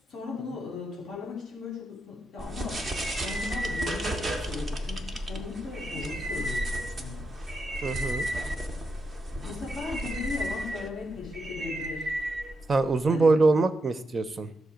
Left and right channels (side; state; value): both; normal; correlation 0.84